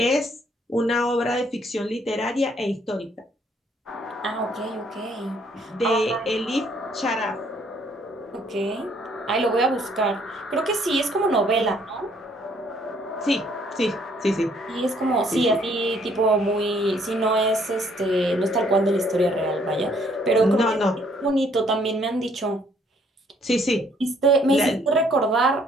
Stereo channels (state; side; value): normal; both; correlation 0.65